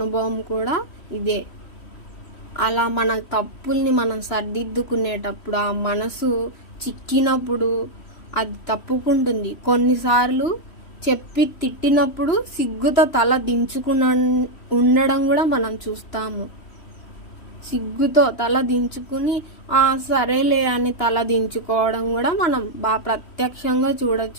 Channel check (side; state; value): right; late; 3.1 ms